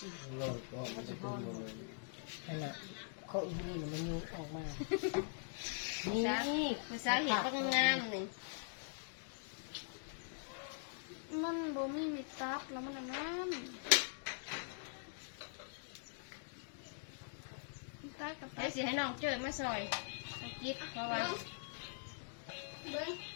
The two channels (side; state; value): right; silent; digital silence